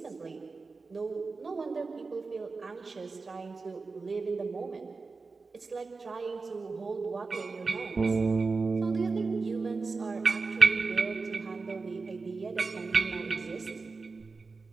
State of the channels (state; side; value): quieter; left; 4.2 dB